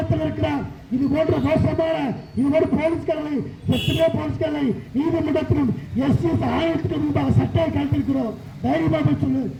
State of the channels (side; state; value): both; identical; correlation 1.00